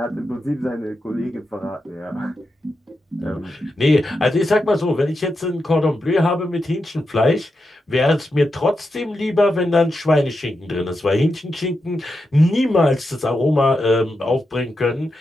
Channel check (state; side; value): normal; both; correlation 0.87